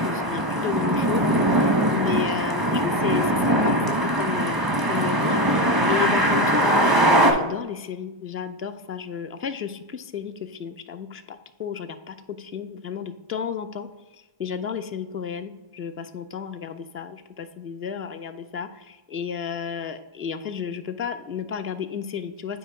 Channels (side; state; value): left; late; 1.0 ms